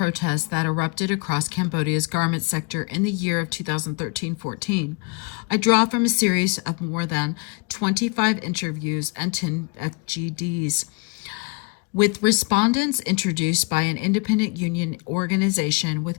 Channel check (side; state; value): right; quieter; 29.2 dB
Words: that erupted across Cambodia's garment sector in the year of 2013-14. I draw from a series of more than 25 interviews and 10 FGDs with respondents introduced by an independent union organization